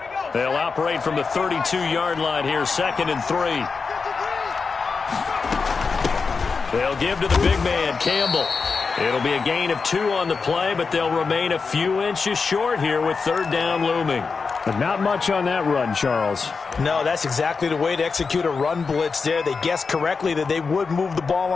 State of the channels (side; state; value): right; quieter; 4.9 dB